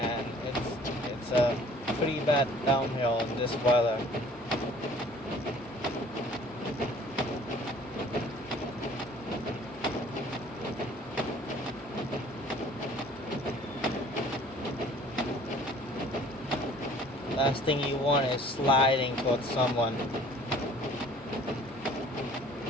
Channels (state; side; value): normal; both; correlation 0.52